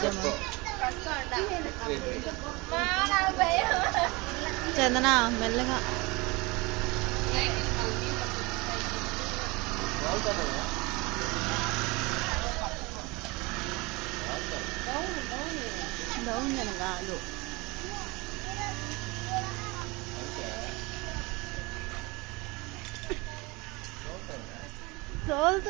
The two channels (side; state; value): left; quieter; 25.1 dB